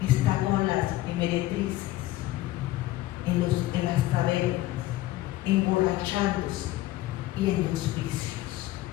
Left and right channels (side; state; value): right; quieter; 16.3 dB